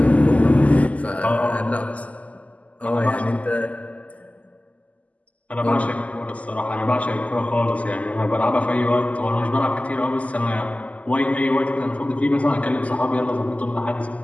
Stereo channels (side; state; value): right; late; 0.071 ms